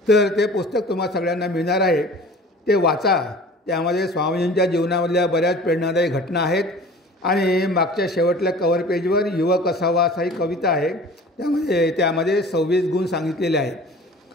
तर ते पुस्तक तुम्हाला सगळ्यांना मिळणार आहे, ते वाचा. त्यामध्ये स्वामीजींच्या जीवनामधल्या बऱ्याच प्रेरणादायी घटना आहेत आणि मागच्या शेवटल्या कव्हर पेजवर युवक असावा असा ही कविता आहे. त्यामध्ये 26 गुण सांगितलेले आहेत.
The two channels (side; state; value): both; normal; correlation 0.44